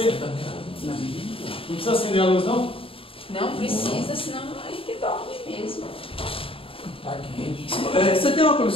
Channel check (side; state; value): right; late; 0.27 ms